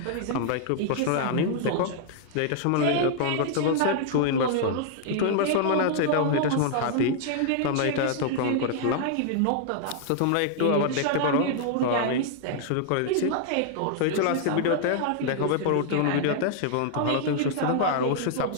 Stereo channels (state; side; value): different; both; correlation -0.01